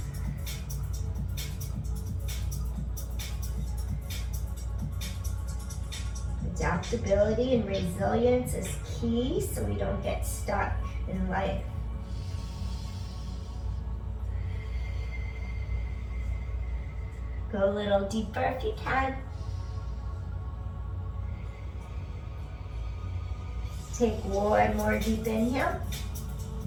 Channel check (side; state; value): both; identical; correlation 1.00